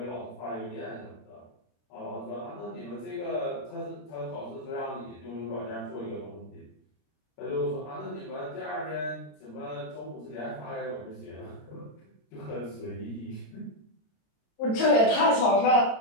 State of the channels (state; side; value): late; right; 29 ms